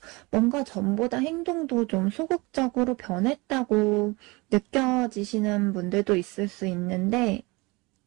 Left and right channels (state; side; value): quieter; left; 24.9 dB